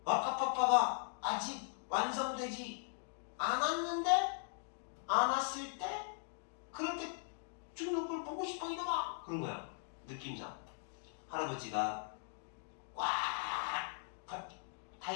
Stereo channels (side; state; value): right; silent; digital silence